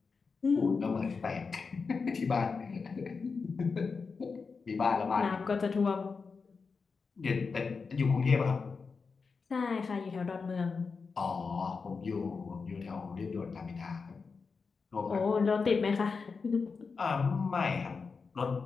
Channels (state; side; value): quieter; right; 4.9 dB